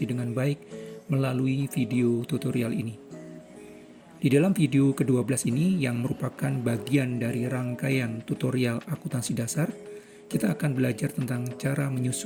dengan baik melalui video tutorial ini. Di dalam video ke-12 ini yang merupakan bagian dari rangkaian tutorial akuntansi dasar, kita akan belajar tentang cara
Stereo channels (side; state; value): both; identical; correlation 1.00